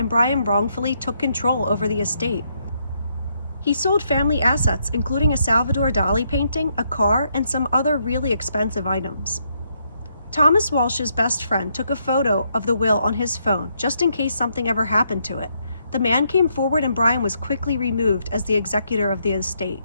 Brian wrongfully took control over the estate. He sold family assets, including a Salvador Dali painting, a car, and some other really expensive items. Thomas Walsh's best friend took a photo of the will on his phone, just in case something ever happened to it. The man came forward and Brian was quickly removed as the executor of the estate.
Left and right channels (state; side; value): inverted; both; correlation -0.76